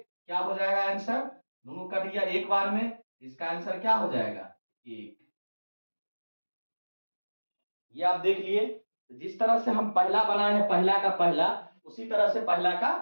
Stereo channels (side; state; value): both; inverted; correlation -1.00